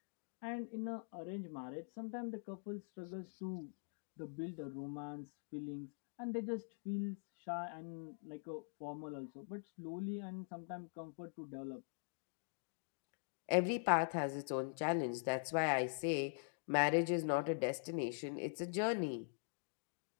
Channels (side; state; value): right; silent; digital silence